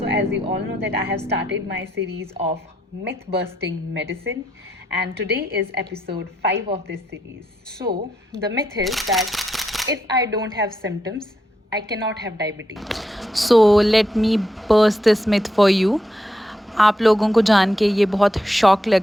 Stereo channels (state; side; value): normal; both; correlation 0.80